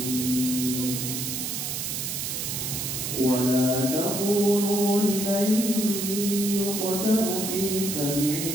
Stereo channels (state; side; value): noise; right; hiss, 3 dB below the sound